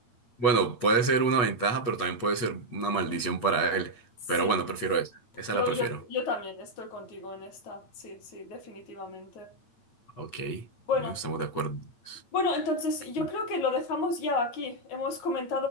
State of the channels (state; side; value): late; right; 8.8 ms